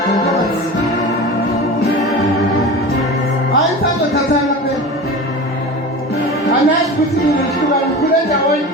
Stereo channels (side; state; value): both; normal; correlation 0.31